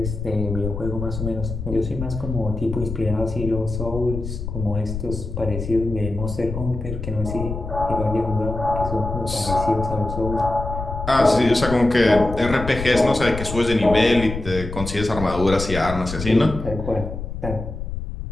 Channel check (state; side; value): noise; left; rumble, 7 dB below the sound